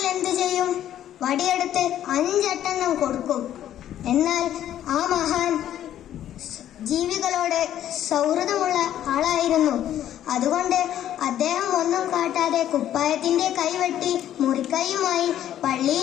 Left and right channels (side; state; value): right; quieter; 11.5 dB